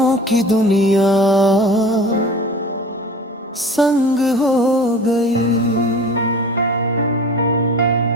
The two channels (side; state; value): both; normal; correlation 0.40